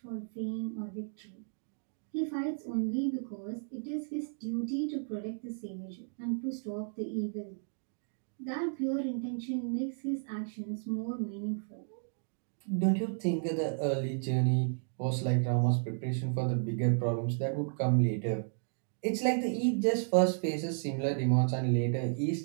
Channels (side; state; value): left; silent; digital silence